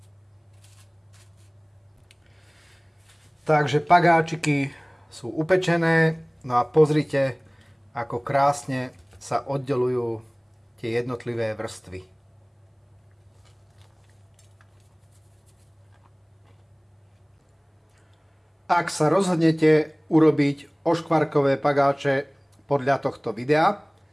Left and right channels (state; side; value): identical; both; correlation 1.00